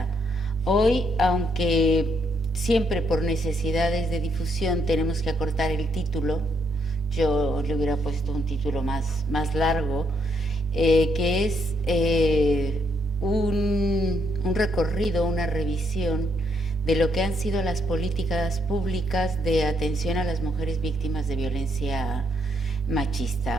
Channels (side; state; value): both; normal; correlation 0.74